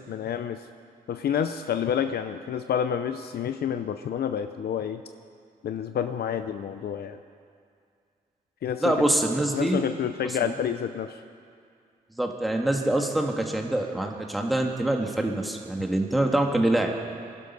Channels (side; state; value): both; normal; correlation 0.66